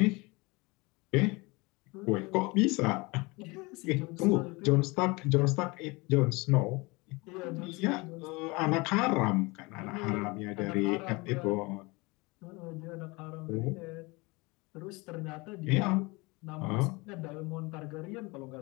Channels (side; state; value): right; quieter; 25.3 dB